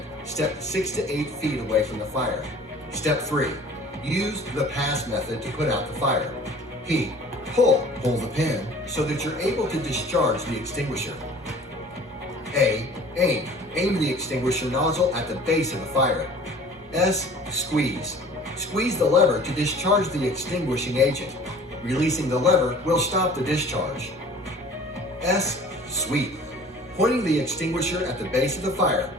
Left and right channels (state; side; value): normal; both; correlation 0.47